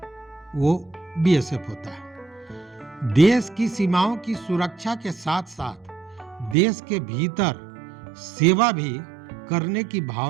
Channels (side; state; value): left; drops out; at 6.6 s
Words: वो बीएसएफ होता है। देश की सीमाओं की सुरक्षा के साथ साथ देश के भीतर सेवा भी करने की